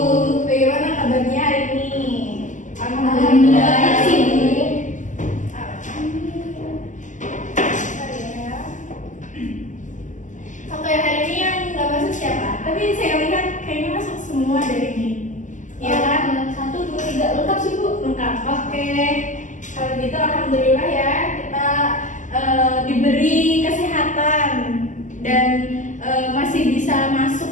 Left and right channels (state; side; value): late; right; 0.37 ms